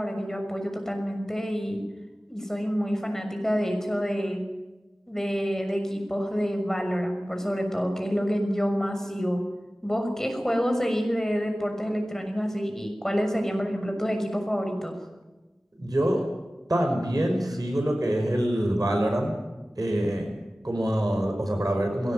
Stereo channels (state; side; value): normal; both; correlation 0.96